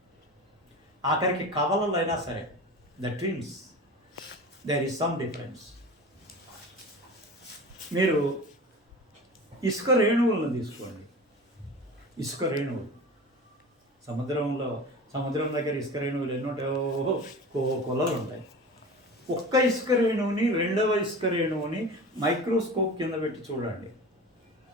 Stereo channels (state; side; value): normal; both; correlation 0.34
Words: ఆఖరికి కవలలైనా సరే, the twins, there is some difference. మీరు ఇసుక రేణువులను తీసుకోండి. ఇసుక రేణువులు సముద్రంలో సముద్రం దగ్గర ఇసుక రేణువులు ఎన్ని ఉంటాయో కొలలు ఉంటాయి. ఒక్క ఇసుక రేణువుని రెండవ ఇసుక రేణువుని మైక్రోస్కోప్ కింద పెట్టి చూడండి,